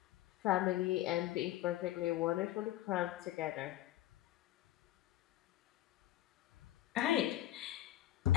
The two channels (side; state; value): right; quieter; 14.2 dB